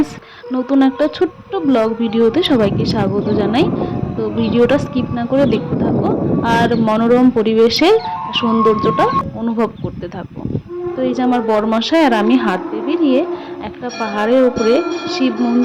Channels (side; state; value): both; identical; correlation 1.00